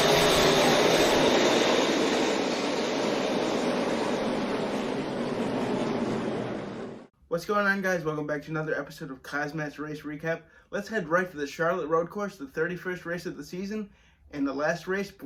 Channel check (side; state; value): both; identical; correlation 1.00